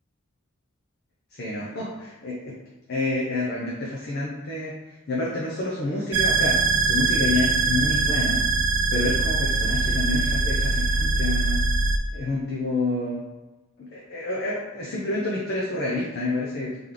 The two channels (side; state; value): both; normal; correlation 0.39